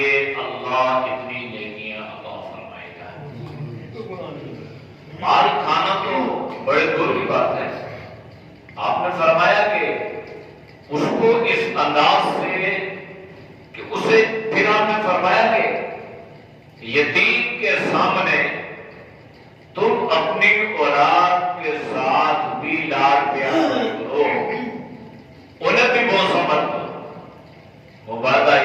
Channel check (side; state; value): both; identical; correlation 1.00